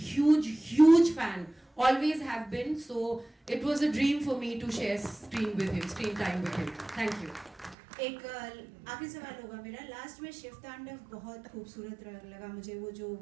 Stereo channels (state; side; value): drops out; left; at 7.8 s